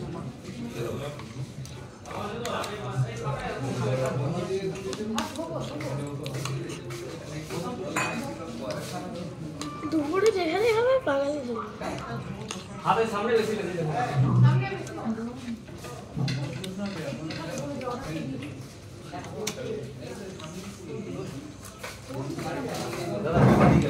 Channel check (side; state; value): both; identical; correlation 1.00